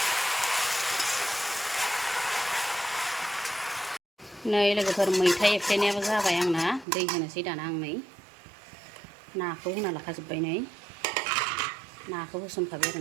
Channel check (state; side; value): drops out; left; at 6.9 s